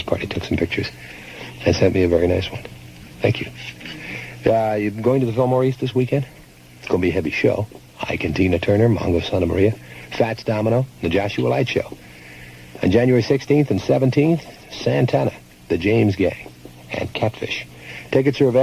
party, took some pictures, and sent me a very nice one. Thank you. You going to the Fillmore East this weekend? It's going to be a heavy show. Ike and Tina Turner, Mongo Santa Maria, Fats Domino, the Joshua Light Show. On January 16th and 17th, Santana, the James Gang, and Catfish. Tickets are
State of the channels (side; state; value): both; identical; correlation 1.00